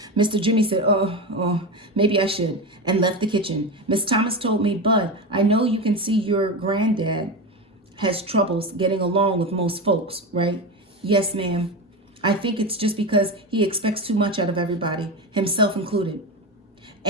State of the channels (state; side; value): normal; both; correlation 0.20